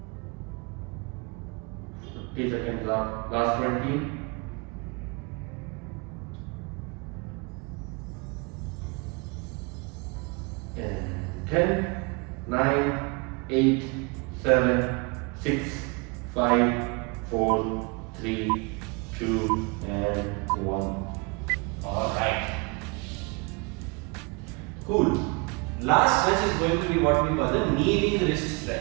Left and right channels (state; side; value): quieter; left; 30.4 dB